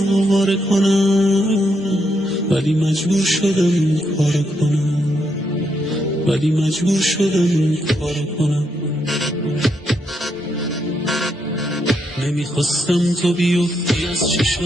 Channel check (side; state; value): both; normal; correlation 0.78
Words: آواره کنم، ولی مجبور شدم این کارو کنم، ولی مجبور شدم این کارو کنم. نمیخواستم تو بیفتی از